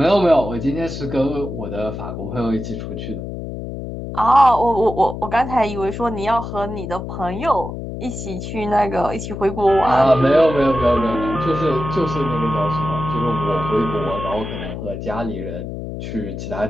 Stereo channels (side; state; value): left; noise; hum, 7 dB below the sound